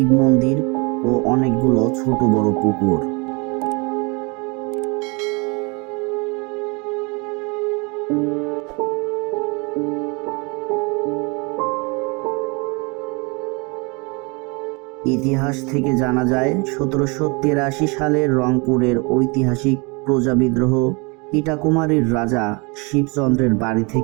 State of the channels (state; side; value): quieter; left; 29.9 dB